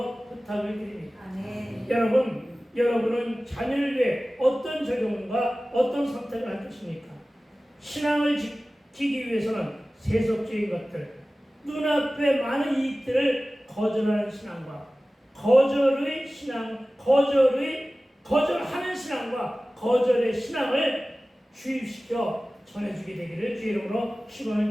부탁을 드립니다. 아멘. 여러분은 자녀를 위해 어떤 적용과 어떤 선택을 할 것입니까? 신앙을 지키기 위해서는 세속적인 것들, 눈앞에 많은 이익들을 거절하는 신앙과 거절하는 신앙과 거절의 신앙을 주입시켜 전해주게 되기를 주 이름으로 축원을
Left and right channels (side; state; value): both; normal; correlation 0.97